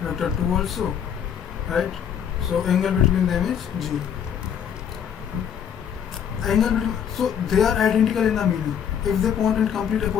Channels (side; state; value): right; quieter; 8.4 dB